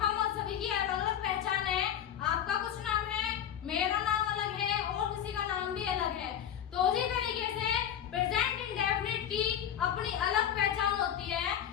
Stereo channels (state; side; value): quieter; right; 9.7 dB